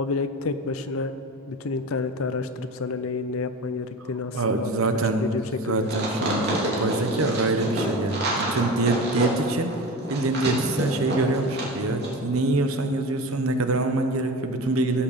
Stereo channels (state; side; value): normal; both; correlation 0.30